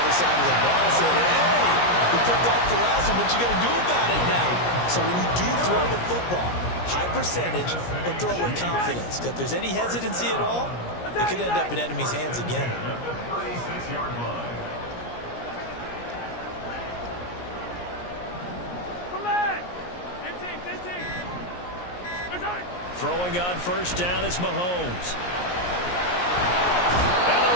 other side of the ball. I said, hey, we picked off the last one. What you going to do about it now? So when you do throw the football, high percentage, but throw with confidence. Because if there's any hesitancy at all, it could end up in enemy's hands again. Throwing on first down is Mahomes. And the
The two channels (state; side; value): late; right; 17 ms